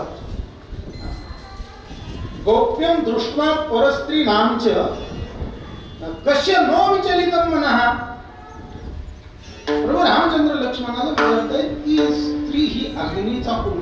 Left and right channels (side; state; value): both; identical; correlation 1.00